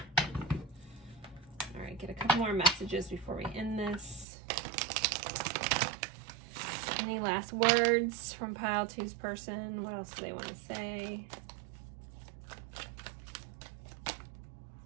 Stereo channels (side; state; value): left; drops out; at 4.2 s